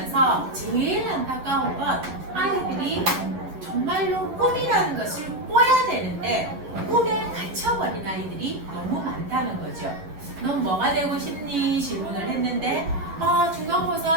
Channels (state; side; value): late; left; 11 ms